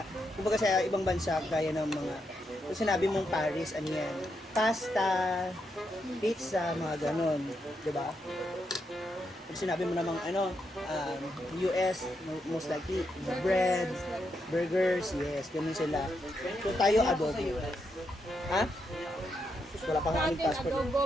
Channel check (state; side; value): normal; both; correlation 0.82